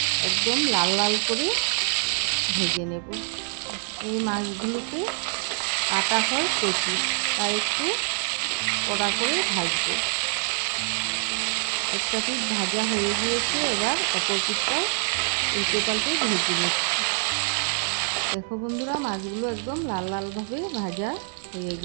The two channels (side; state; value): left; silent; digital silence